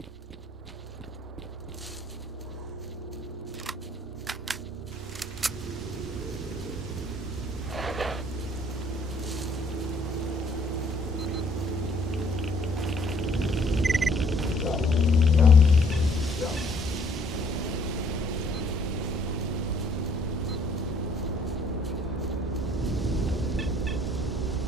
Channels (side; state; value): both; normal; correlation 0.62